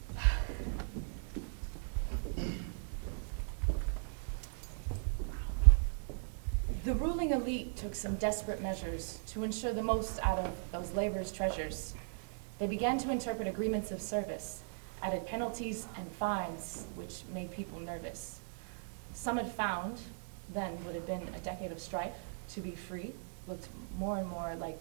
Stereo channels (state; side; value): silent; left; digital silence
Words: The ruling elite took some desperate measures to ensure the most out of those labor's treasures. They began to interpret agreements of service, added penalties and fines, which made people nervous. Some had found, then would have been a decade of strife, to be free looked more and more like